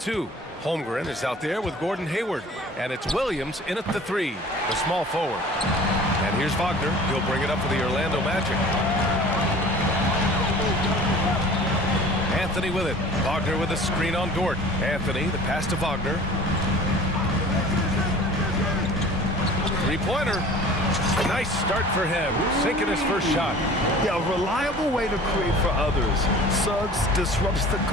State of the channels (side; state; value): both; normal; correlation 0.44